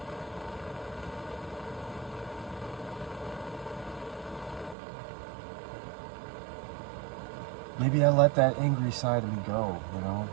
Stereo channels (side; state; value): left; drops out; at 4.8 s